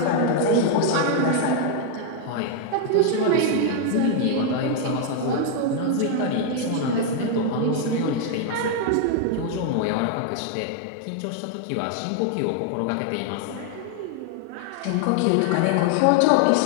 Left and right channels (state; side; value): different; both; correlation 0.00